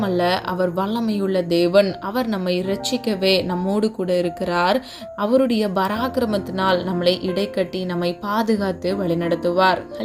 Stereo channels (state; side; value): identical; both; correlation 1.00